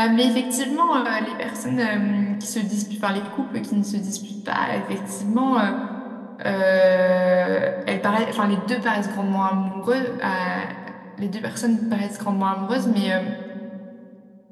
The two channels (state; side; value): identical; both; correlation 1.00